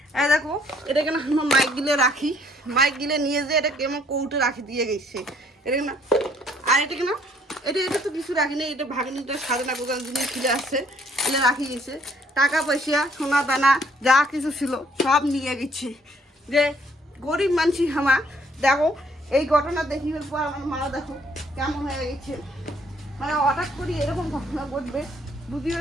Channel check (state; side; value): normal; both; correlation 0.64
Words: এই দেখো, এটা কেন আমার মাইক গিলে রাখি, মাইক গিলে নিয়ে যে এটা কেমন কৌটে রাখি দিয়ে গেছে। এটা না, আর এটা কেন, এটা তো কিছু রাখিনি, এটা ভাগিনিটা সাজানা গোজান জিনিস ছিল আসছে, এলে রাখি গেছে। টাকা পয়সা সোনা দানা যা কিছু ছিল সব নিয়ে গেছে। যে গরিব মানুষ আমার, দেখো এই ঘটনা দেখিবার পর আমার মা দেখো কেমন হয়ে গেছে। মানে হঠাৎ করে এরকম ঘটনা ঘটবে